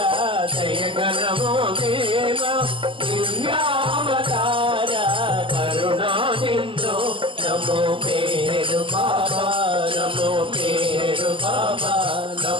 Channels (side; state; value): left; late; 0.25 ms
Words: దయగణమో దేవా దుర్యావతార కరుణా సింధు నమో పేరు బాబా నమో పేరు బాబా